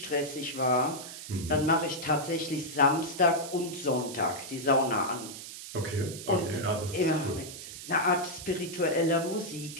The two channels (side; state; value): right; noise; hiss, 11 dB below the sound